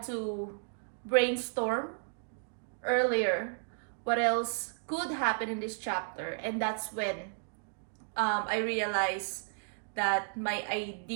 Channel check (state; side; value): silent; left; digital silence